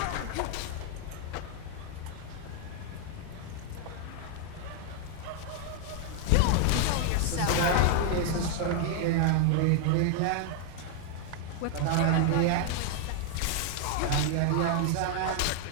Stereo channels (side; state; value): both; different; correlation 0.00